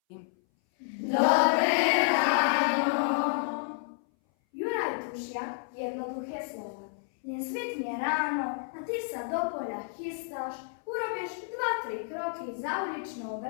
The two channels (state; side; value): silent; right; 58 dB below the other